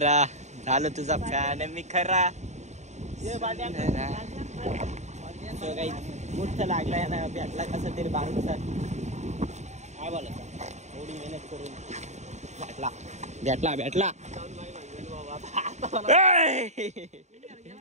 झालं तुझा फॅन मी खरा. मोठं लागलाय ना भेटला कसा तरी बारूचा. काय बोलायचं एवढी मेहनत करून भेटला.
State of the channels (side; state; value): left; late; 0.33 ms